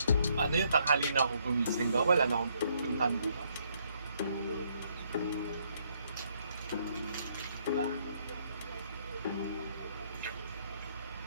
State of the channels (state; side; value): inverted; both; correlation -0.71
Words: ano yung tanghali na ako gumising ba? Wala na akong puntahan bukas. Diba?